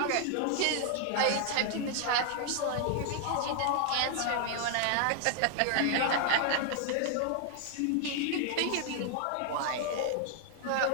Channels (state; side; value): different; both; correlation 0.00